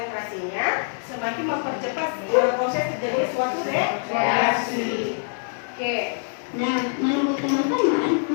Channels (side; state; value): right; silent; digital silence